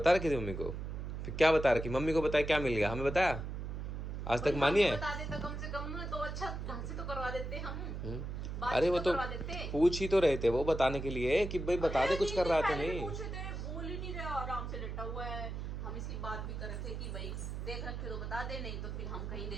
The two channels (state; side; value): noise; right; hum, 5 dB below the sound